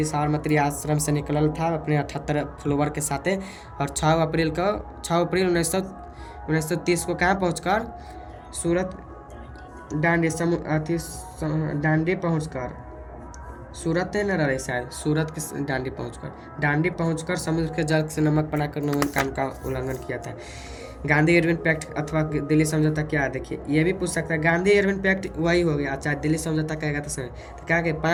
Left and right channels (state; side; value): identical; both; correlation 1.00